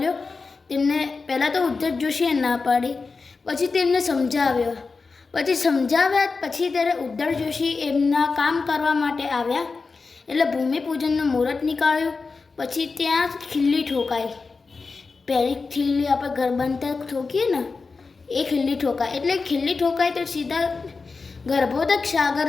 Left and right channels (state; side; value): quieter; right; 4.4 dB